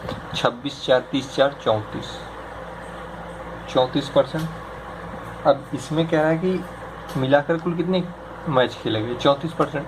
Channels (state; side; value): identical; both; correlation 1.00